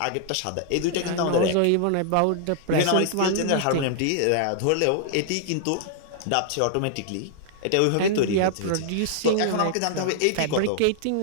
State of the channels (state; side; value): different; both; correlation -0.01